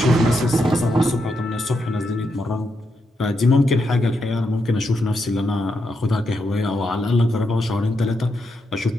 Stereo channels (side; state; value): both; normal; correlation 0.82